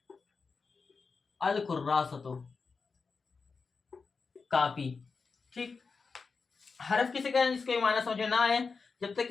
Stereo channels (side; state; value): right; quieter; 4.8 dB